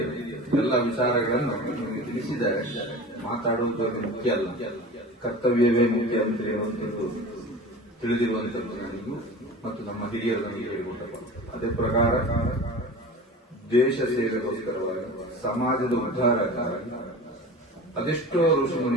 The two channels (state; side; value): normal; both; correlation 0.35